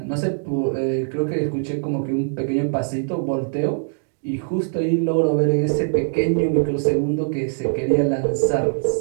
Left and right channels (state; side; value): silent; left; digital silence